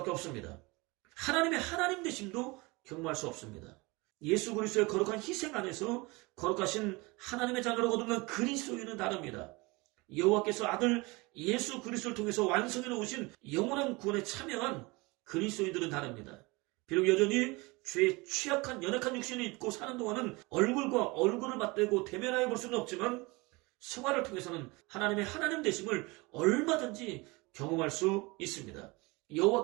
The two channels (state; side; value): quieter; left; 24.8 dB